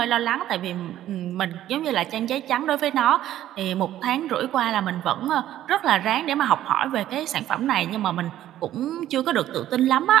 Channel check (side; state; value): left; quieter; 12.7 dB